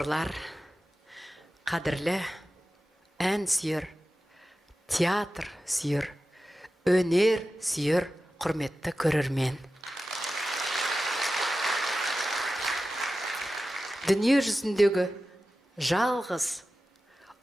қадірлі ән сүйер, театр сүйер, өнер сүйер, құрметті көрермен. Дүние жүзіндегі жалғыз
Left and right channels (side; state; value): both; normal; correlation 0.94